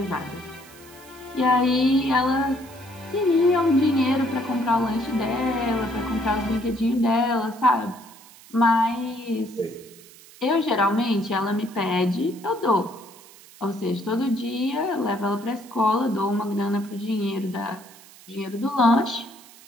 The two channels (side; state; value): right; noise; hiss, 22 dB below the sound